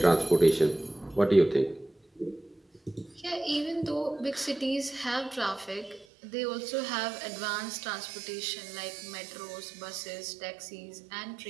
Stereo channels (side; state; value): left; drops out; at 6.1 s